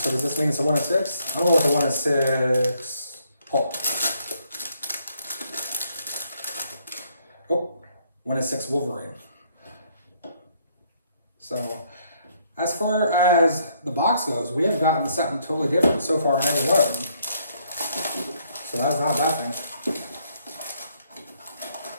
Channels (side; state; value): both; inverted; correlation -0.69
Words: does this mean it's a 1 in 6? I don't know what the 1 in 6 Hulk. Oh, 1 in 6 Wolverine. So as far as the box goes, we have gotten something totally different so far in every one of them. So that's not a bad thing.